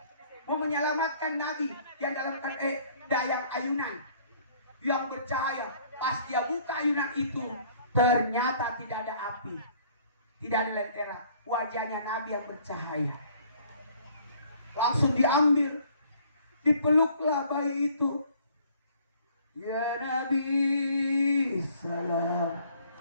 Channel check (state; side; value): inverted; both; correlation -0.58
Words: mau menyelamatkan Nabi yang dalam dayang ayunan yang bercahaya. Pas dia buka ayunan itu, ternyata tidak ada api, tidak ada lentera. Wajahnya Nabi yang bercahaya. Langsung diambil, dipeluklah bayi itu. Ya Nabi salam.